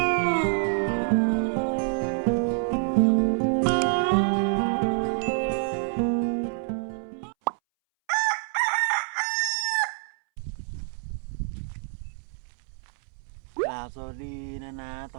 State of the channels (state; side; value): silent; left; 60 dB below the other